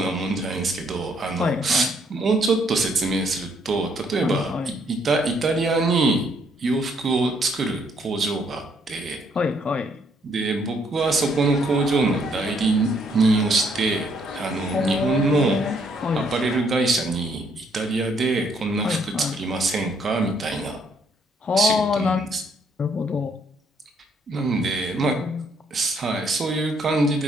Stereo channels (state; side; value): normal; both; correlation 0.69